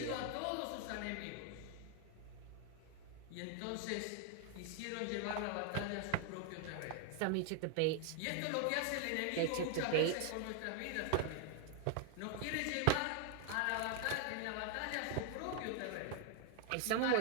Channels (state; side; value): different; both; correlation 0.00